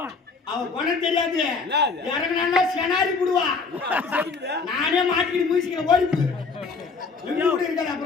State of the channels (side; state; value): right; quieter; 4.6 dB